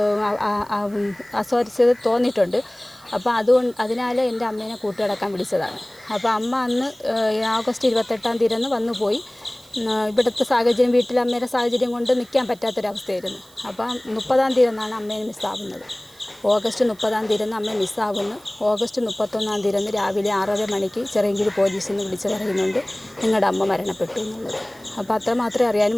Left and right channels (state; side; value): noise; right; hiss, 26 dB below the sound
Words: അസ്വാരസ്യത തോന്നിയിട്ടുണ്ട്. അപ്പോൾ അതിനാൽ എൻ്റെ അമ്മേനെ കൂട്ടുകിടക്കാൻ വിളിച്ചതാണ്. അപ്പോൾ അമ്മ അന്ന് ഓഗസ്റ്റ് 28-ാം തീയതി വന്നു പോയി. ഇവിടുത്തെ സാഹചര്യം, വീട്ടിലെ അമ്മയുടെ സാഹചര്യം കൊണ്ട് നിൽക്കാൻ പറ്റാത്തൊരവസ്ഥയായിരുന്നു. അപ്പം 30-ാം തീയതി അമ്മയെ മിസ്സാവുന്നത്. ഓഗസ്റ്റ് 30-ാം തീയതി അമ്മയെ മിസ്സാവുന്നു. ഓഗസ്റ്റ് 31-ാം തീയതി രാവിലെ 6:30 മണിക്ക് ചിറയൻകീഴ് പോലീസിൽ നിന്ന് വിളിച്ച് പറയുന്നുണ്ട് നിങ്ങളുടെ അമ്മ മരണപ്പെട്ടു എന്നുള്ളത്. അപ്പോൾ അത്ര മാത്രമേ അറിയാൻ